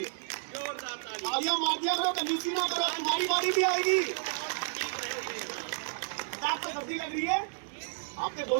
जोरदार तालियां मार दिया करो, कंजूसी ना करो, तुम्हारी बारी भी आएगी। आपको सर्दी लग रही है, आपके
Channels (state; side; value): silent; left; digital silence